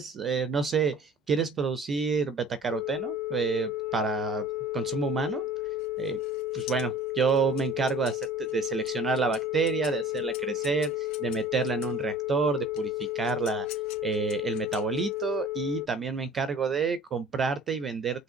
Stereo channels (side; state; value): both; normal; correlation 0.46